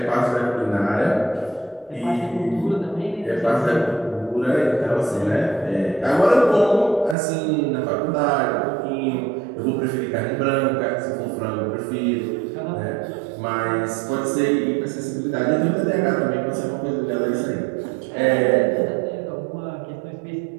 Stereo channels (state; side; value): drops out; left; at 7.2 s